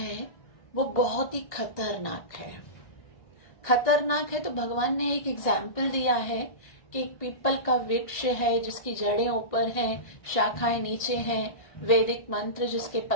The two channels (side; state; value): right; late; 1.8 ms